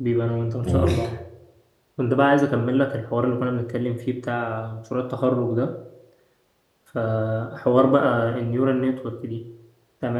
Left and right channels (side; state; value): both; identical; correlation 1.00